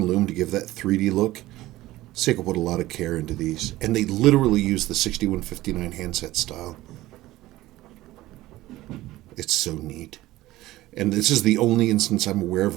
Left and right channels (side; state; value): left; quieter; 16.9 dB